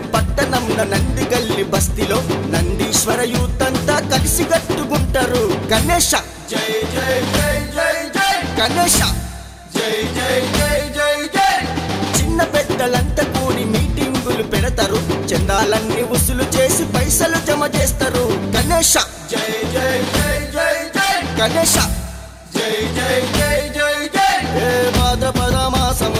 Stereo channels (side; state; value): both; identical; correlation 1.00